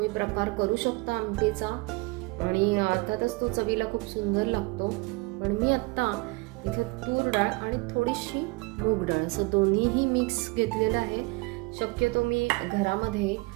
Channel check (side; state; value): left; quieter; 25.2 dB